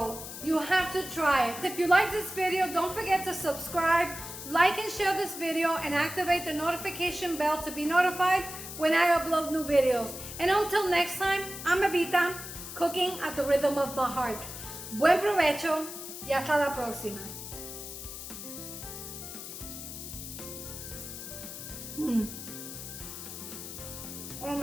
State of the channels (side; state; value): left; noise; hiss, 10 dB below the sound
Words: You have to try it. If you like this video, don't forget to subscribe, like and share this video, and activate the notification bell to be notified when I upload new videos. And until next time, I'm Evita, cooking at the rhythm of my heart. Buen provecho y hasta la próxima. Oh